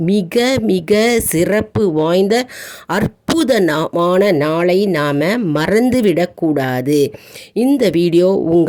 மிக மிக சிறப்பு வாய்ந்த அற்புதமான நாளை நாம் மறந்துவிடக்கூடாது. இந்த வீடியோ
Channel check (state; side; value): identical; both; correlation 1.00